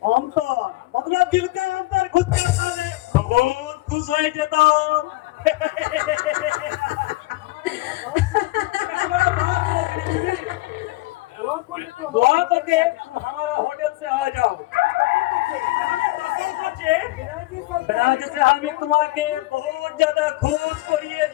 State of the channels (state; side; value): quieter; right; 19.9 dB